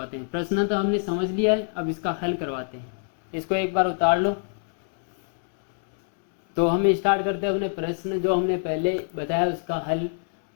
हैं। प्रश्न तो हमने समझ लिया है, अब इसका हल करवाते हैं। इसको एक बार उतार लो। तो हम स्टार्ट करते हैं अपने प्रश्न जो हमने पहले बताया उसका हल।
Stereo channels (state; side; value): silent; right; digital silence